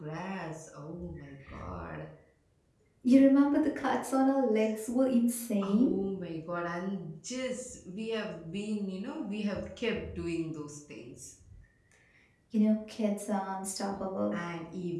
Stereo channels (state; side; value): identical; both; correlation 1.00